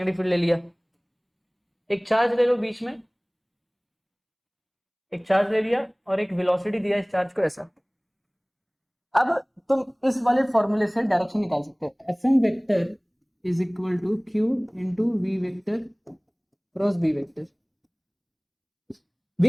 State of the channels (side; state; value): both; identical; correlation 1.00